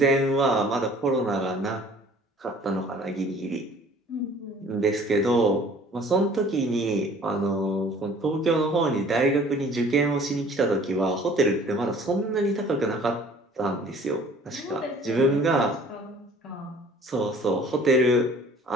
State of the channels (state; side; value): normal; both; correlation 0.52